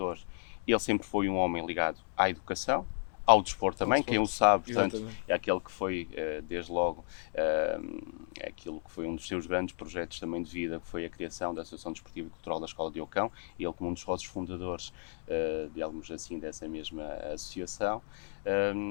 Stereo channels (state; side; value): silent; right; 55 dB below the other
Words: ele sempre foi um homem ligado à educação, ao desporto também, quem o sabe, portanto, exatamente, é aquele que foi, desde logo, aquilo que foi um dos seus grandes projetos também de vida, que foi a criação da Associação Desportiva e Cultural da Escola de Ocão, e ele como um dos sócios fundadores, digamos assim, dessa mesma associação.